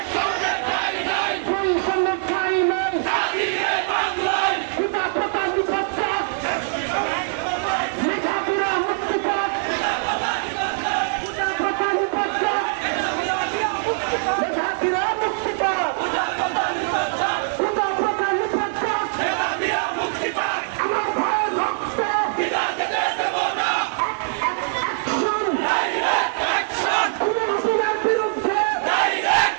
ঠাঁই নাই। পিতা প্রধান নিপত্তক, লেখাপড়া মুক্তি পাক। পিতা প্রধান নিপত্তক, লেখাপড়া মুক্তি পাক। পিতা প্রধান নিপত্তক, আমার ভাইয়ের রক্ত হাসিনার বিরুদ্ধে,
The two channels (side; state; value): left; silent; digital silence